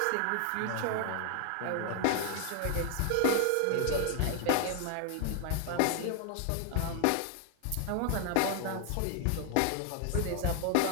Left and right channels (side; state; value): both; different; correlation 0.00